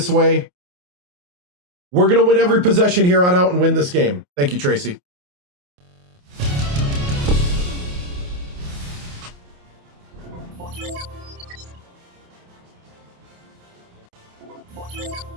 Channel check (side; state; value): left; late; 28 ms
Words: way. We're going to win every possession here on out and win this game. Thank you, Tracy.